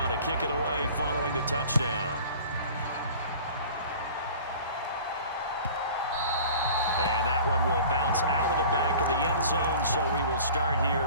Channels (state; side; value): inverted; both; correlation -0.43